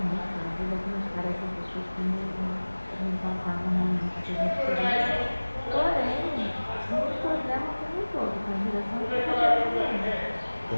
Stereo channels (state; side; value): inverted; both; correlation -1.00